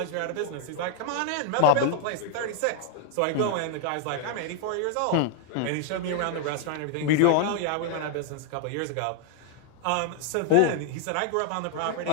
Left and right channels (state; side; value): different; both; correlation 0.00